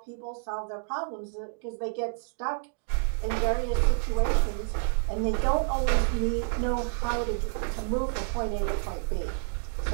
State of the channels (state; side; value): silent; left; 59 dB below the other